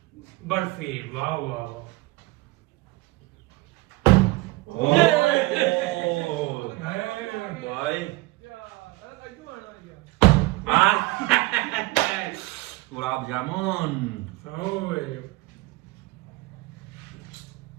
बर्फी। वाह वाह। भाई गुलाब जामुन।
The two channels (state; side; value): quieter; left; 21.1 dB